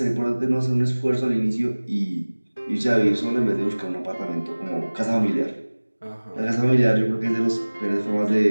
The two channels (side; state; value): both; inverted; correlation -1.00